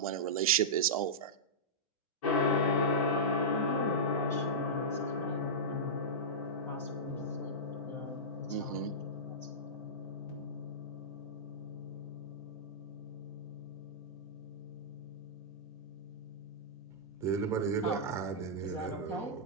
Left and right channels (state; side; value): normal; both; correlation -0.14